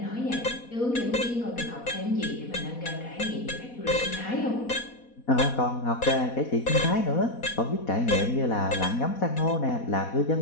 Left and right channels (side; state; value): right; late; 4.1 ms